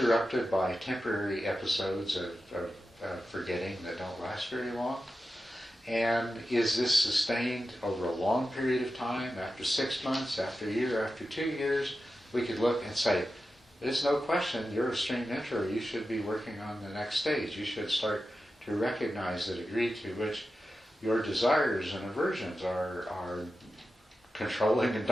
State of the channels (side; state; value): both; normal; correlation 0.92